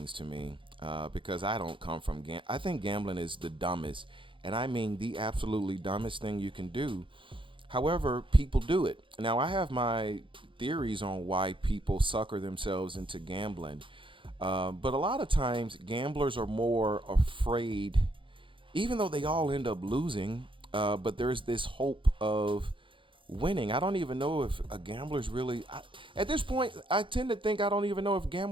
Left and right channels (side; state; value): left; late; 0.25 ms